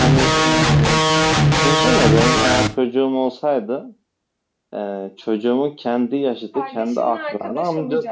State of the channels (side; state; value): both; identical; correlation 1.00